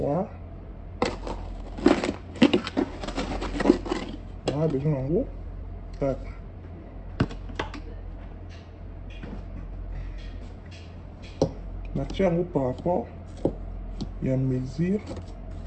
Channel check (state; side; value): identical; both; correlation 1.00